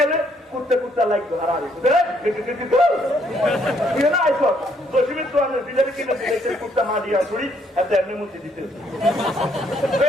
কুত্তে কুত্তা লাগতো আর আইস দশমীর তো আমি বিলের কিনে কুত্তা মা দিয়া ছড়ি এত এমনি মুক্তি দিতে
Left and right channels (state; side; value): normal; both; correlation 0.69